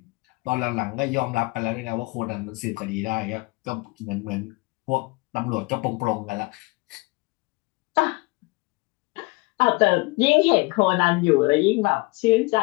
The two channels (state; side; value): quieter; right; 25.4 dB